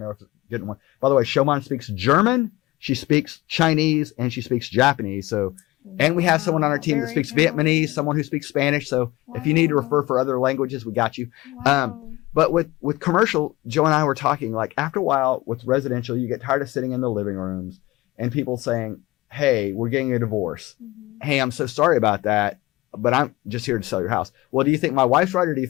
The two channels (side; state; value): right; quieter; 19.4 dB